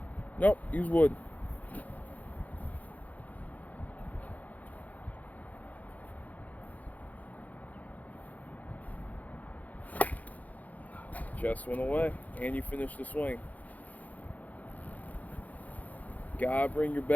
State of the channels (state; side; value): late; right; 0.077 ms